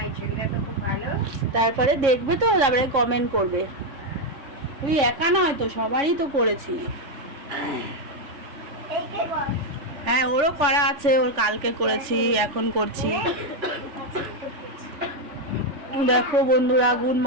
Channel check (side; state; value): left; late; 3.4 ms